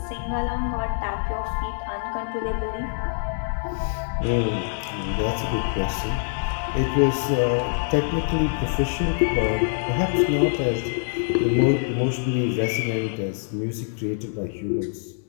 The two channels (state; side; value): silent; right; 62 dB below the other